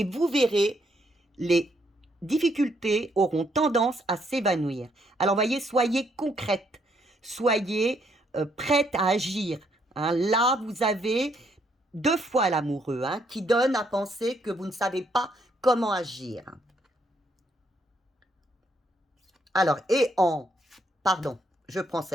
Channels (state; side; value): normal; both; correlation 0.72